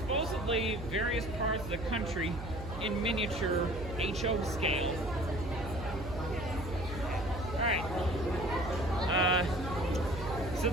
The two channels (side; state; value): right; noise; hum, 9 dB below the sound